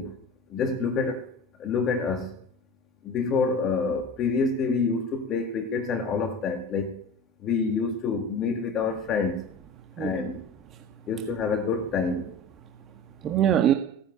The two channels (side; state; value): both; normal; correlation 0.34